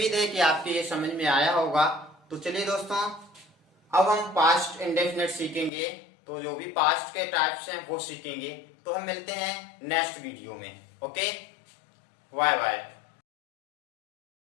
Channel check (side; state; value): right; drops out; at 5.7 s